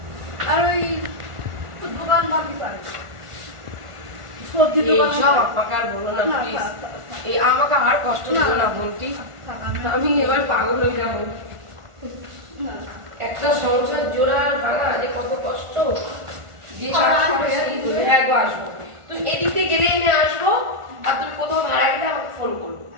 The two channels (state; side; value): late; left; 1.4 ms